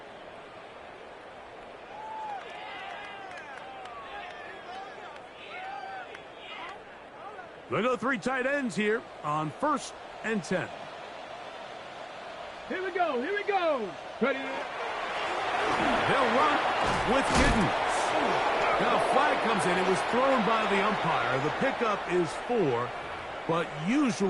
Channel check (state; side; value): identical; both; correlation 1.00